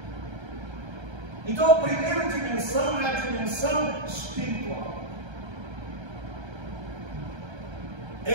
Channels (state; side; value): late; left; 1.3 ms